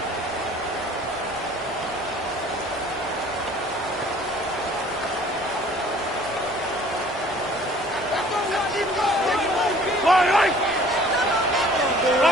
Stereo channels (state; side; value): normal; both; correlation 0.52